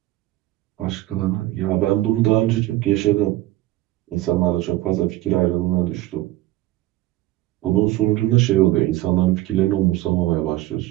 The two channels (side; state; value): left; quieter; 16.8 dB